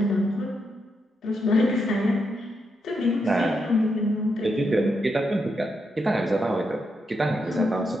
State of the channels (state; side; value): normal; both; correlation 0.82